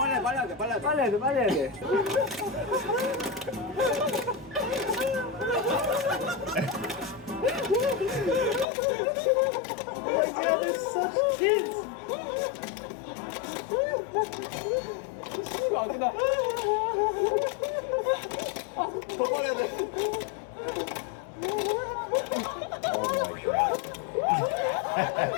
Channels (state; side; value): drops out; right; at 8.7 s